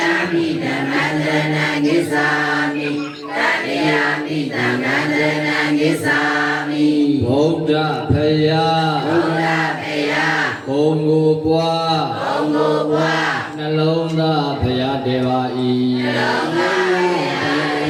ပိဓမ္မံတရဏဂိသာမိတတိယပိသံဃံတရဏဂိသာမိဗုဒ္ဓဖယားဘုံကိုပွားနှလုံးသားဖယားတေပါ၏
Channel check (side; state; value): both; identical; correlation 1.00